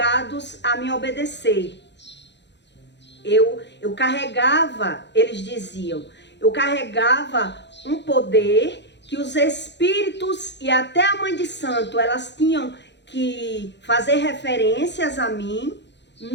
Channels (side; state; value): right; late; 0.51 ms